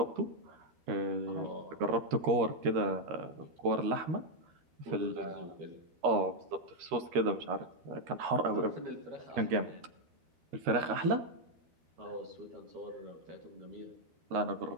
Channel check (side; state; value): left; late; 13 ms